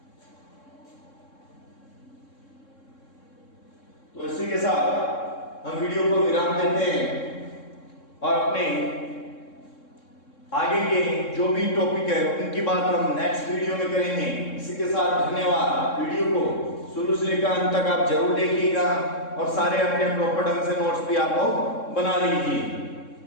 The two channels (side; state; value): right; late; 3.7 ms